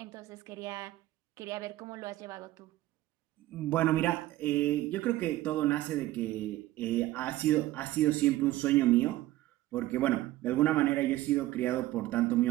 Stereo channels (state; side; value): quieter; left; 16.2 dB